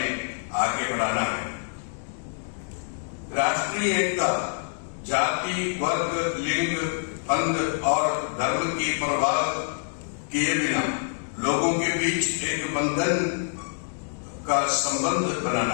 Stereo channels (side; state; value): right; silent; digital silence